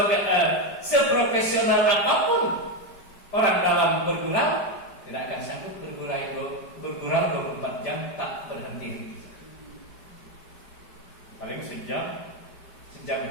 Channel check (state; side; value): late; right; 5.0 ms